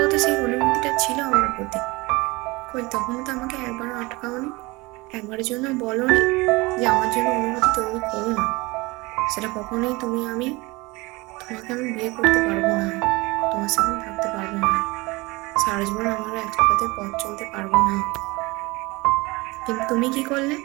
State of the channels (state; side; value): quieter; left; 23.5 dB